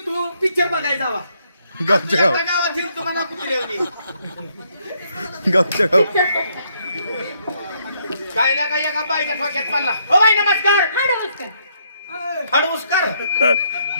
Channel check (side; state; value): both; inverted; correlation -0.72